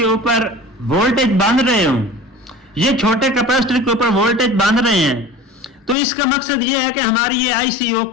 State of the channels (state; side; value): drops out; right; at 6.0 s